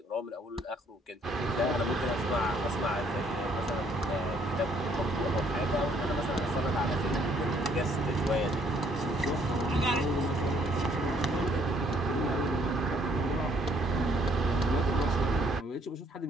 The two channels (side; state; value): both; normal; correlation 0.65